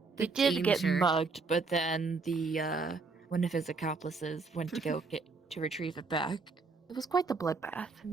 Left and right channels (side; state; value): left; quieter; 4.2 dB